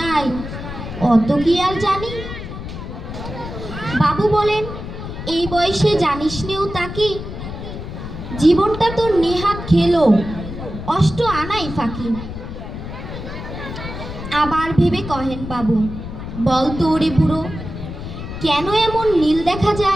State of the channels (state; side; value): noise; left; rumble, 9 dB below the sound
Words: অত কি আর জানি। বাবু বলেন, এই বয়সে জানিস নেও তাকি, জীবনটা তোর নেহাত খেলো অষ্ট আনাই ফাঁকি। আবার ভেবে কহেন বাবু, বল তো ওরে বুড়ো, কেন এমন নীল দেখা